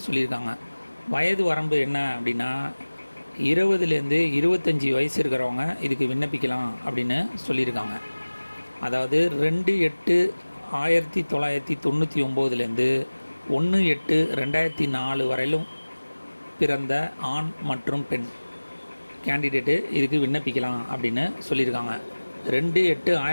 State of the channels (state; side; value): inverted; both; correlation -1.00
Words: சொல்லியிருக்காங்க. வயது வரம்பு என்ன அப்படின்னா, 20லேருந்து 25 வயசு இருக்கிறவங்க இதுக்கு விண்ணப்பிக்கலாம் அப்படின்னு சொல்லியிருக்காங்க. அதாவது 2/8/1999லேருந்து 1/8/2004 வரையிலும் பிறந்த ஆண் மற்றும் பெண் கேண்டிடேட்டு இதுக்கு விண்ணப்பிக்கலாம் அப்படின்னு சொல்லியிருக்காங்க.